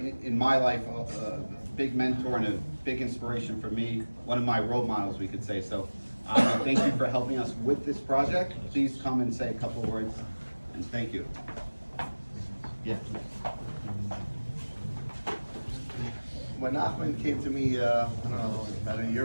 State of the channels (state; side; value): inverted; both; correlation -1.00